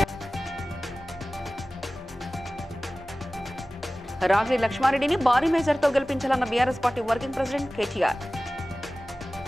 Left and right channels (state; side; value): normal; both; correlation 0.97